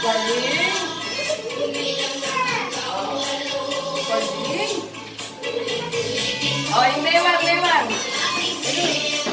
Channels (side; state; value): both; identical; correlation 1.00